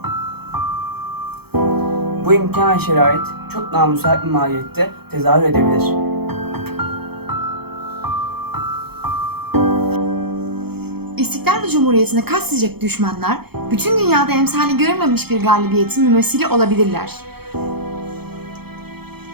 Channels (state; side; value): late; left; 0.96 ms